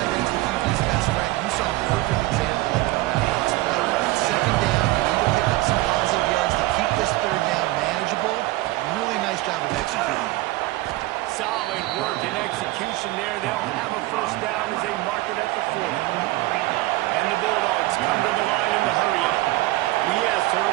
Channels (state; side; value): quieter; left; 19.0 dB